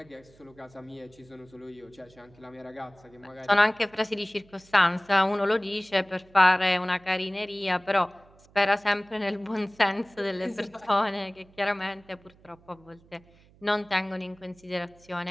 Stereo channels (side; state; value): right; noise; hum, 28 dB below the sound